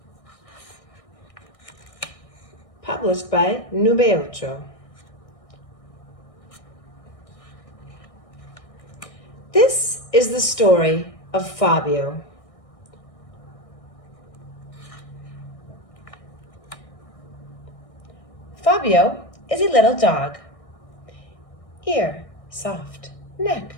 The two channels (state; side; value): late; right; 1.6 ms